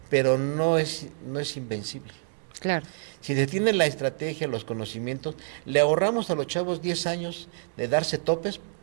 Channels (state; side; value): silent; left; digital silence